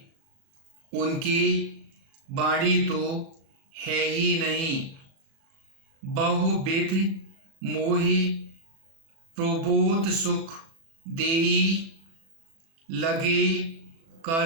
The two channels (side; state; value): left; late; 37 ms